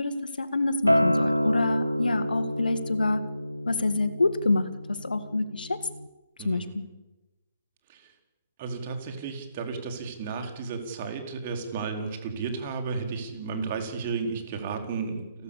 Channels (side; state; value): both; inverted; correlation -0.86